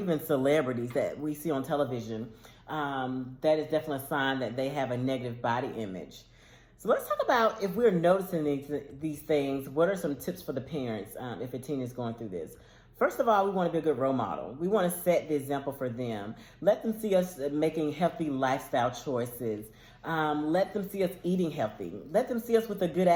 celebrities that we see on television, that is definitely a sign that they have a negative body image. So let's talk about, if we're noticing these things, what are some tips for the parents if a teen is going through this? First of all, we want to be a good role model. We want to set the example for them. Let them see us making healthy lifestyle choices. Let them see us eating healthy. Let them see us with a good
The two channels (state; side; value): identical; both; correlation 1.00